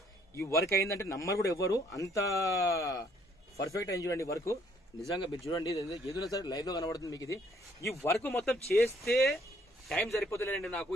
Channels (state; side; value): normal; both; correlation 0.65